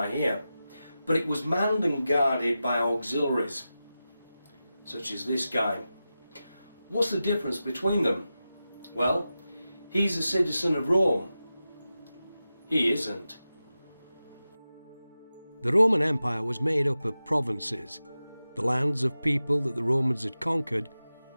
here, but it was manned and guarded by auxiliaries such as this guy. What's the difference between them? Well, he's a citizen of Rome. He isn't. The Roman Empire was made up of provinces, the lands of people that the Romans had conquered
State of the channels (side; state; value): both; inverted; correlation -0.93